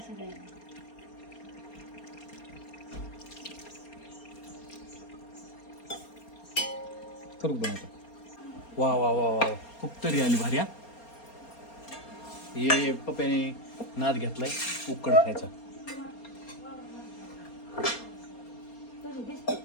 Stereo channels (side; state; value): right; late; 4.3 ms